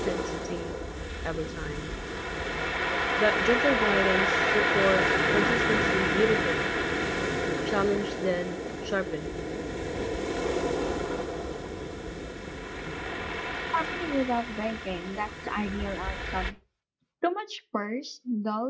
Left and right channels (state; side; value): identical; both; correlation 1.00